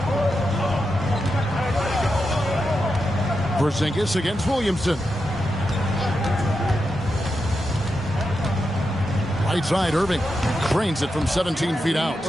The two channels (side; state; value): both; normal; correlation 0.87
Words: Porzingis against Williamson. Right side, Irving drains it from 17 feet out.